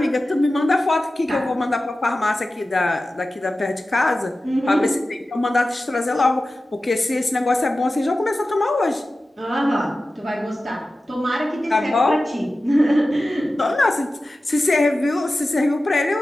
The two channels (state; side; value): normal; both; correlation 0.95